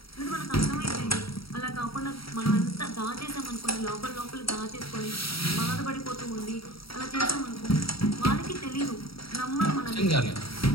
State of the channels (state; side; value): late; right; 0.75 ms